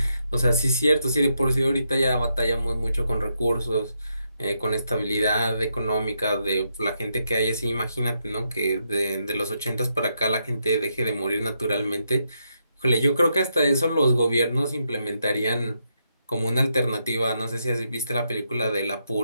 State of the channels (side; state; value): both; inverted; correlation -0.81